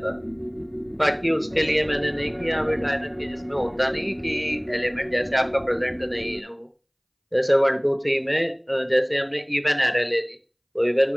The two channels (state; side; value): identical; both; correlation 1.00